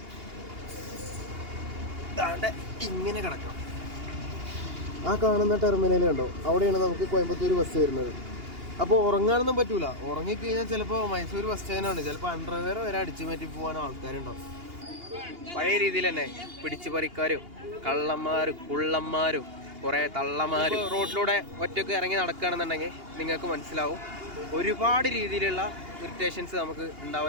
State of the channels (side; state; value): left; late; 2.8 ms